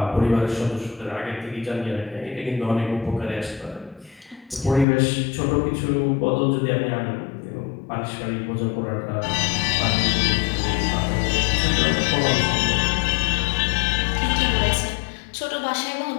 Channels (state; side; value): drops out; right; at 4.9 s